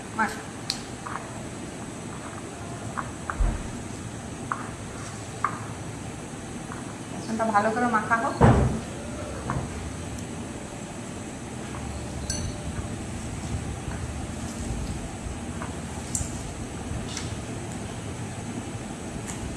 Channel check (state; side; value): identical; both; correlation 1.00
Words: মাখ। বেসনটা ভালো করে মাখা হোক।